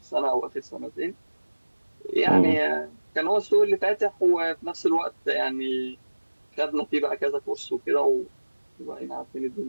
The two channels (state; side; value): inverted; both; correlation -1.00